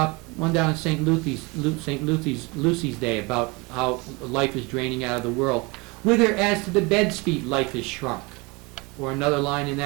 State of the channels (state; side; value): quieter; left; 26.7 dB